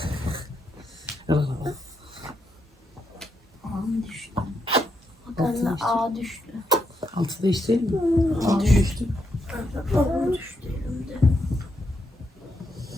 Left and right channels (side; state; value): both; normal; correlation 0.80